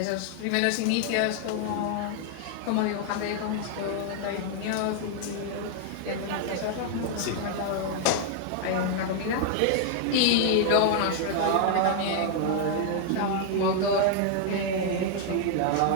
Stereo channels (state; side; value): different; both; correlation 0.00